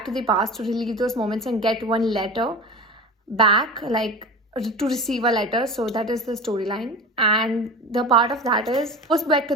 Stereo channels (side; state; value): both; normal; correlation 0.32